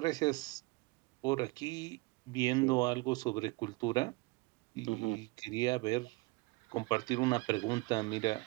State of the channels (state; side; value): quieter; left; 25.1 dB